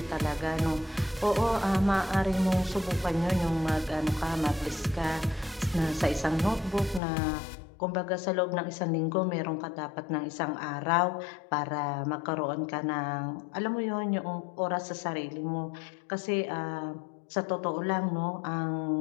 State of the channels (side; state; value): right; drops out; at 7.0 s